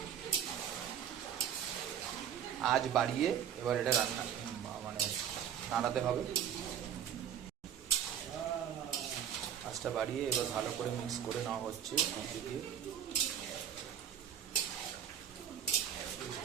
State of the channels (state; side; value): quieter; left; 9.2 dB